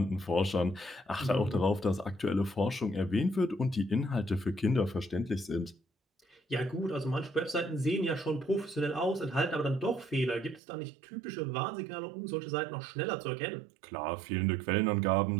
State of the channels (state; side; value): drops out; left; at 10.6 s